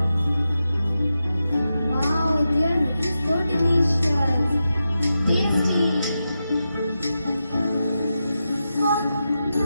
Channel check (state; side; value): inverted; both; correlation -0.89